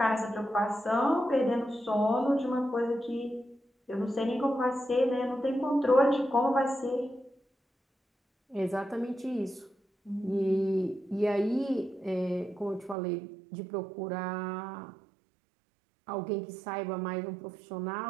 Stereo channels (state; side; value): drops out; left; at 13.0 s